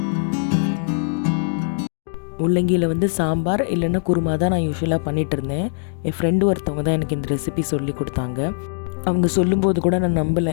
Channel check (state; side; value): silent; right; digital silence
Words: முள்ளங்கியில் வந்து சாம்பார் இல்லைன்னா குருமா தான் நான் யூஸ்வலாக பண்ணிகிட்டு இருந்தேன். என் ஃப்ரெண்டு ஒருத்தவங்க தான் எனக்கு இந்த ரெசிபி சொல்லி கொடுத்தாங்க. அவங்க சொல்லும்போது கூட நான்